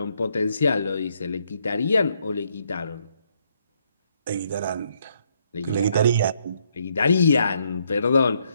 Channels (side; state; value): both; inverted; correlation -0.73